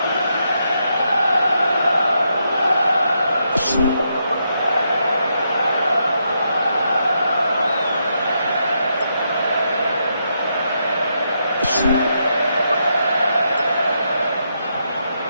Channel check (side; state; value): both; inverted; correlation -0.80